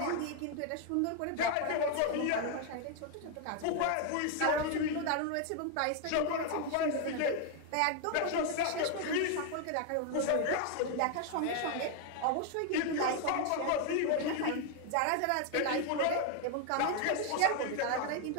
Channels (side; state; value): both; different; correlation 0.01